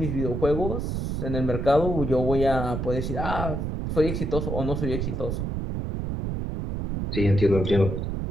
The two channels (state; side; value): noise; right; rumble, 2 dB below the sound